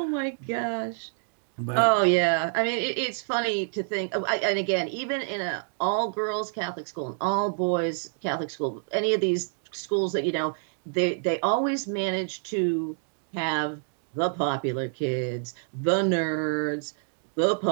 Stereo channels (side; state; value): left; silent; digital silence